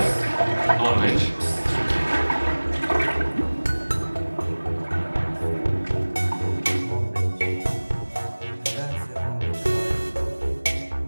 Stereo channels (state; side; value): inverted; both; correlation -1.00